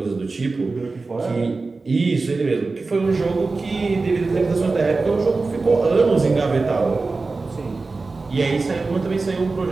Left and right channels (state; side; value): quieter; left; 3.8 dB